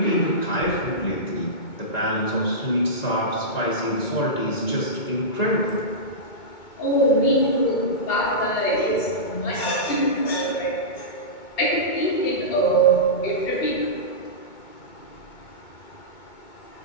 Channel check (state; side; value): late; right; 2.2 ms